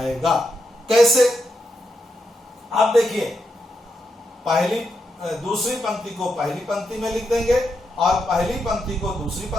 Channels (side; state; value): both; normal; correlation 0.83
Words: कैसे, आप देखिए, दूसरी पंक्ति को पहली पंक्ति में लिख देंगे और पहली पंक्ति को दूसरी